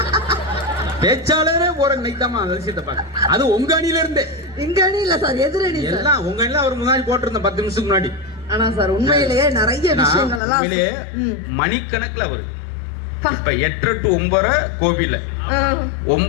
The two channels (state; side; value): drops out; right; at 10.4 s